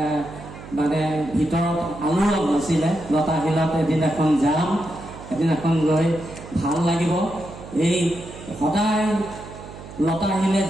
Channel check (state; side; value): noise; right; hum, 15 dB below the sound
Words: মানে ভিতৰত আলোড়ন নাছিলে। লতাশিলত এদিন এখন যাম, এদিন এখন গৈ ভাল লাগিব। এই সদায় লতাশিলে